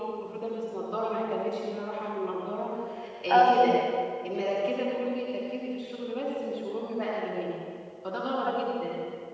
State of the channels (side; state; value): both; identical; correlation 1.00